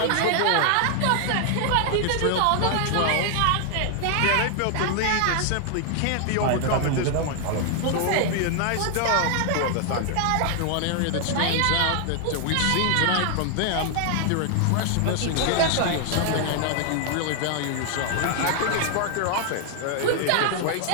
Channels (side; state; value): both; different; correlation 0.00